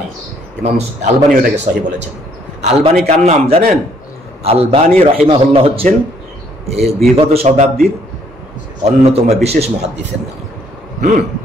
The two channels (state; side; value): normal; both; correlation 0.66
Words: ইমাম আলবানী ওটাকে সহিহ বলেছেন। আলবানী কার নাম জানেন? আলবানী রাহিমাহুল্লাহ হচ্ছেন বিগত শতাব্দীর অন্যতম বিশেষ মুহাদ্দিসের নাম।